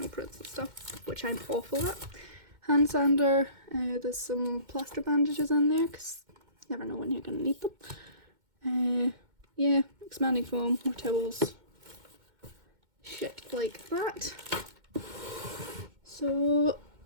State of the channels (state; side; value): late; left; 2.1 ms